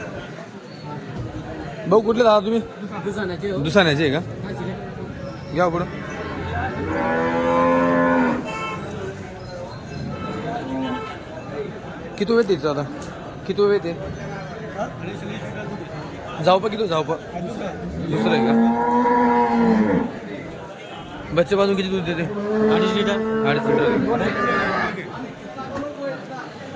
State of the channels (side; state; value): both; identical; correlation 1.00